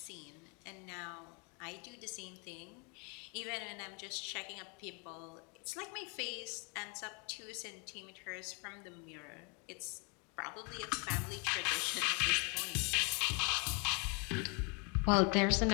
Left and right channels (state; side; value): quieter; right; 34.1 dB